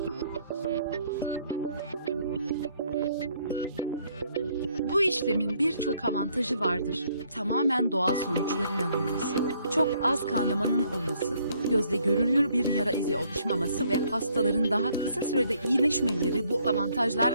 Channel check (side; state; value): both; inverted; correlation -0.67